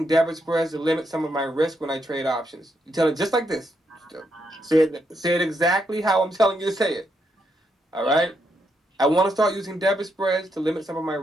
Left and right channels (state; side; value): normal; both; correlation 0.79